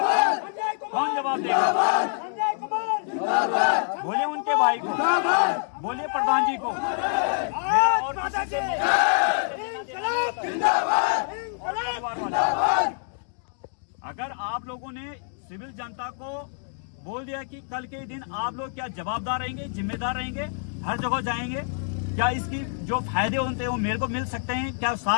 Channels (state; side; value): silent; right; digital silence